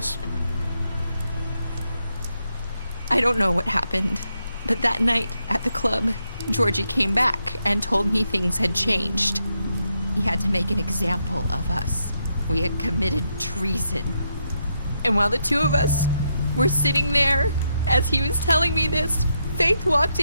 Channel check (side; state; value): both; inverted; correlation -0.81